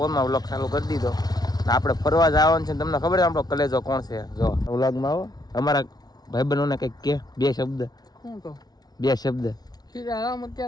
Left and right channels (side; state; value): right; late; 0.19 ms